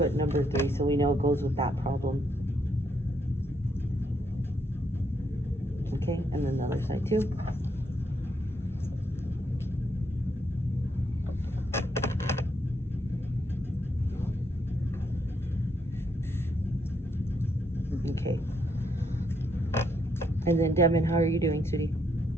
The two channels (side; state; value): both; normal; correlation 0.76